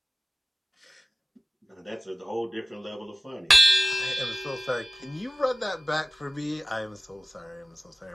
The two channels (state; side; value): normal; both; correlation 0.96